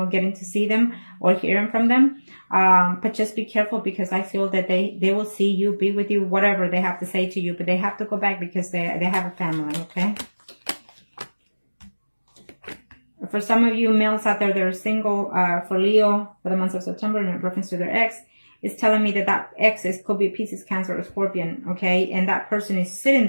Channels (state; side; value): inverted; both; correlation -1.00